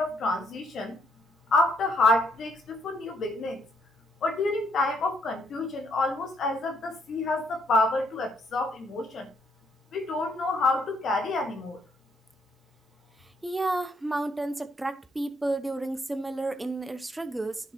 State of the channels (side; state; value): both; normal; correlation 0.72